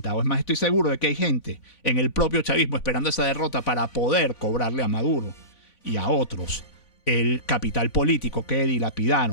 Es más, estoy seguro de que hay gente en el propio chavismo esperando esa derrota para poder cobrarle a Maduro y a otros el capital político que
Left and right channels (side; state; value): right; late; 3.5 ms